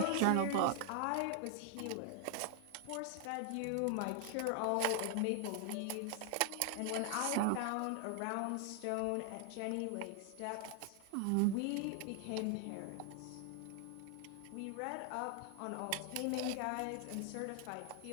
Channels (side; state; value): both; different; correlation 0.00